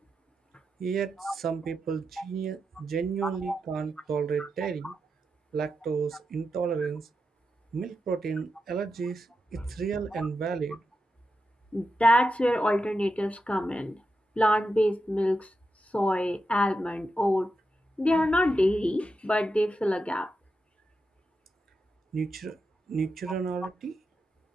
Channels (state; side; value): normal; both; correlation 0.87